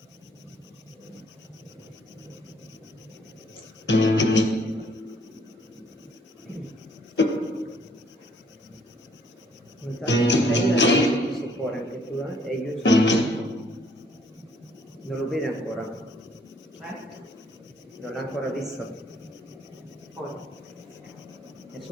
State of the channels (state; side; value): normal; both; correlation 0.65